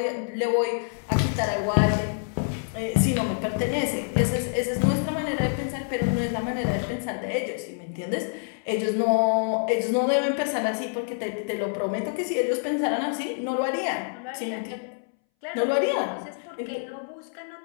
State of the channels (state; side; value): silent; right; 60 dB below the other